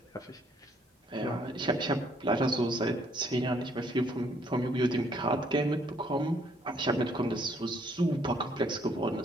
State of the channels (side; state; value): both; normal; correlation 0.66